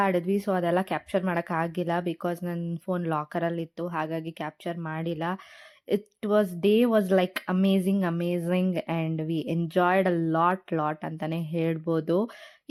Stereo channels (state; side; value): identical; both; correlation 1.00